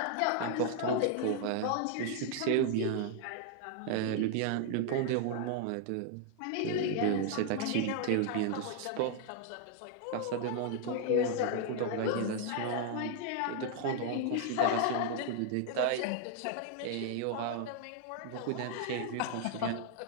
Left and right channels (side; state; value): both; different; correlation 0.00